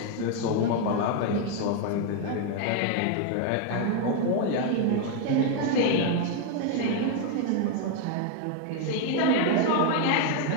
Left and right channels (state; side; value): different; both; correlation 0.00